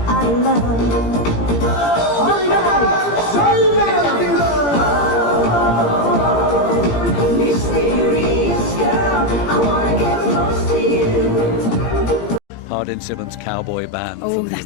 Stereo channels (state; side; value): late; right; 17 ms